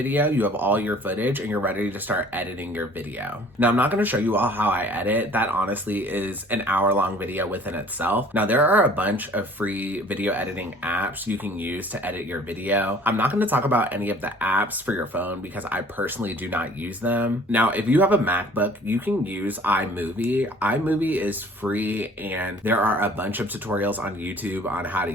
you have all your footage, and you're ready to start editing your video. Now, I'm not going to show you all how I edit. That honestly is an hour-long video within itself. Now, there are a bunch of free video editing apps you can use to edit your video. I'm not going to talk about any of the apps for your phone because I personally do not use them. Now, if you have a MacBook, you can use iMovie. iMovie is free, and there are a bunch of tutorials on YouTube on how to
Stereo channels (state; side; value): normal; both; correlation 0.51